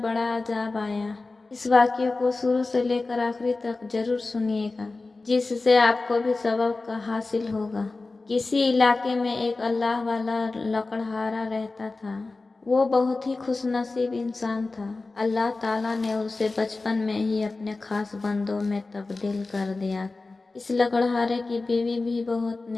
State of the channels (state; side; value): quieter; right; 3.5 dB